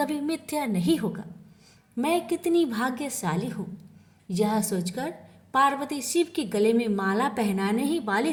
मिथ्या नहीं होगा। मैं कितनी भाग्यशाली हूँ। यह सोचकर पार्वती शिव के गले में माला पहनाने ही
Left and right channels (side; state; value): both; identical; correlation 1.00